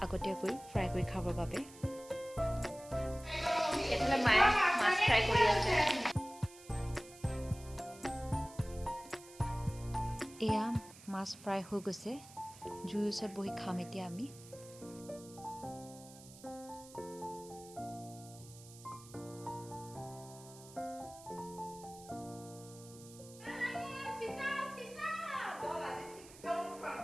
আগতীয়াকৈ ফ্ৰাই কৰি খাবৰ বাবে। মায়ে মাছ ফ্ৰাই কৰি আছে। এয়া মাছ ফ্ৰাই হৈ গৈছে। জুইৰ ওচৰত বহি খাম এতিয়া আমি।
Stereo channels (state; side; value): noise; right; hiss, 19 dB below the sound